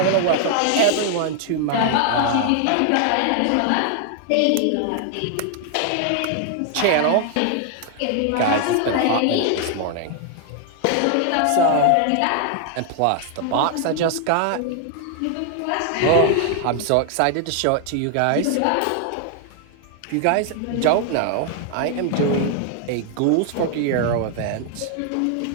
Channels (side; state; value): both; different; correlation 0.00